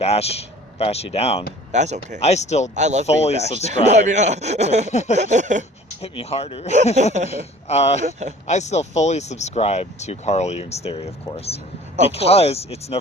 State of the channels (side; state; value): both; normal; correlation 0.48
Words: you down. That's okay. I love fully being bashed. subscribe. No, I mean, Hit me harder. I still fully subscribe to Carl Jung's theory, of course. Because it's